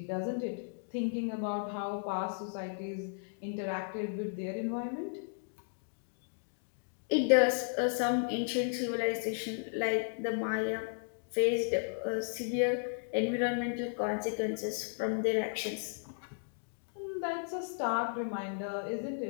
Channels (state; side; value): silent; right; digital silence